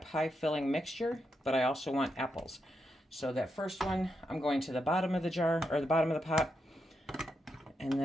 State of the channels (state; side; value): normal; both; correlation 0.84